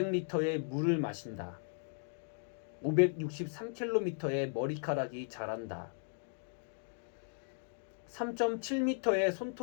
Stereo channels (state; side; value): silent; right; digital silence